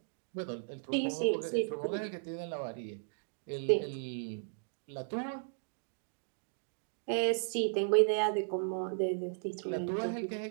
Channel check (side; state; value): left; silent; digital silence